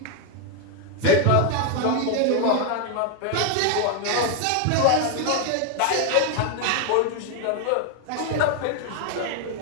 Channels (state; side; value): different; both; correlation 0.01